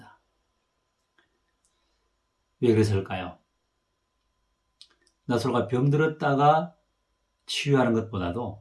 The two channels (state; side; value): identical; both; correlation 1.00